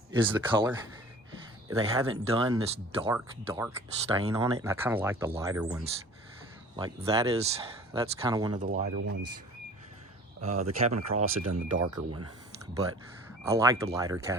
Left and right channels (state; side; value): normal; both; correlation 0.45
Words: is the color. They haven't done this dark stain on it, and I kind of like the lighter ones. Like that's kind of one of the lighter ones. The cabin across had done the darker one, but I like the lighter